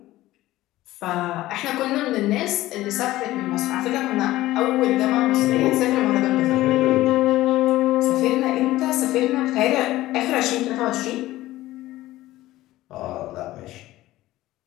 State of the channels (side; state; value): right; quieter; 16.3 dB